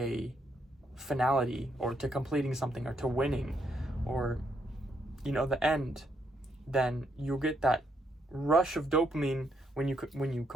finality, or to completing something, or to winning, or, you know, the end, then you'll get that rush of dopamine when you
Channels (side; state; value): both; normal; correlation 0.75